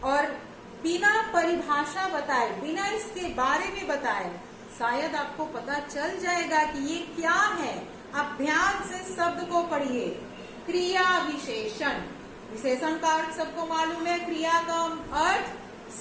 और बिना परिभाषा बताए, बिना इसके बारे में बताए शायद आपको पता चल जाएगा कि ये क्या है। आप ध्यान से शब्द को पढ़िए। क्रिया विशेषण, विशेषण का अर्थ सबको मालूम है, क्रिया का अर्थ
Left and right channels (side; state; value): both; identical; correlation 1.00